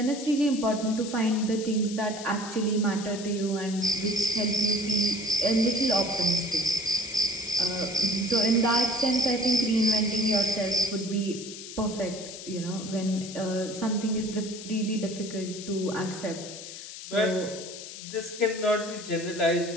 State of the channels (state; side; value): noise; left; hiss, 11 dB below the sound